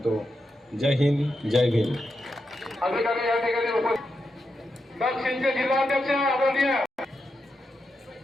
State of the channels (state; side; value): normal; both; correlation 0.86